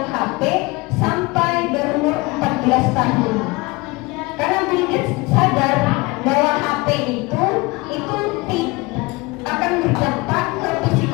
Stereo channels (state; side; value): quieter; right; 24.2 dB